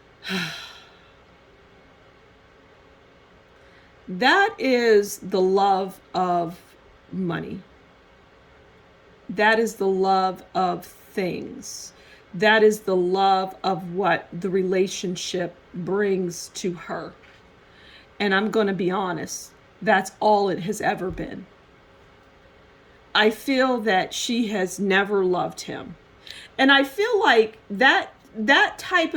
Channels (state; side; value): identical; both; correlation 1.00